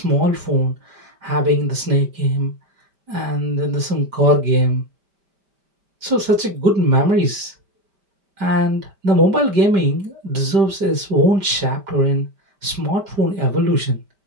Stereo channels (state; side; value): late; left; 5.1 ms